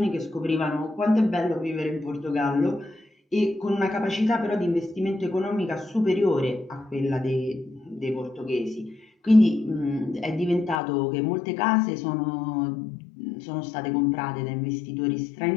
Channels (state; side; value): drops out; right; at 10.8 s